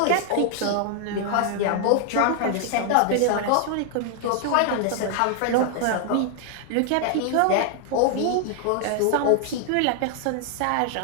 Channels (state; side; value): different; both; correlation 0.00